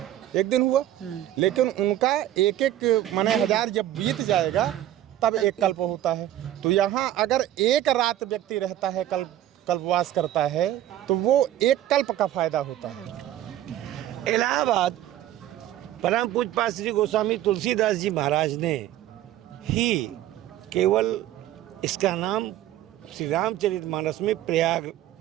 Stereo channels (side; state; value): left; quieter; 12.9 dB